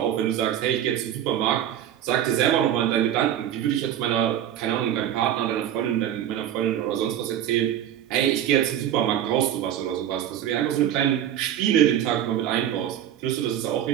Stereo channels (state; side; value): quieter; left; 10.8 dB